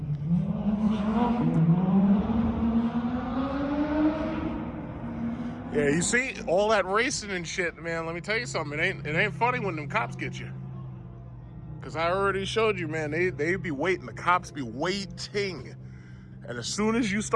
Yeah, you see all that racing and shit, man. Let me tell you something. It ain't funny when them cops get you. Cause I already showed you, man. They be waiting. The cops be waiting, and as soon as you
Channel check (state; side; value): identical; both; correlation 1.00